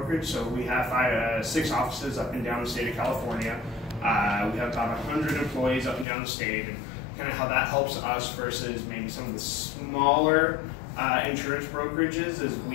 So we have 6 offices up and down the state of California. We have about 100 employees up and down the state, and kind of how that helps us versus maybe some of the smaller insurance brokerages is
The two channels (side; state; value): right; drops out; at 6.1 s